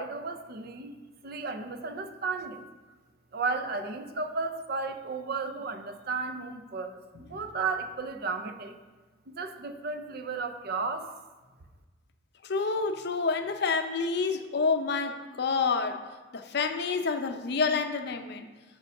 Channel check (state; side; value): normal; both; correlation -0.13